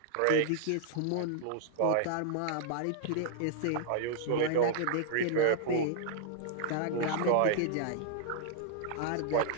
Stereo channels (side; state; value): both; different; correlation -0.01